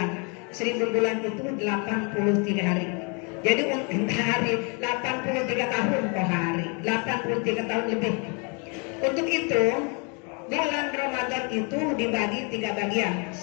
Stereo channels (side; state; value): right; quieter; 34.4 dB